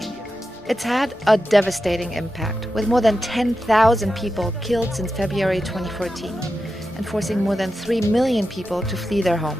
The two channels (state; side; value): normal; both; correlation 0.90